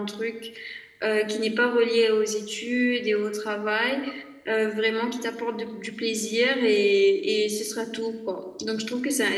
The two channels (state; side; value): identical; both; correlation 1.00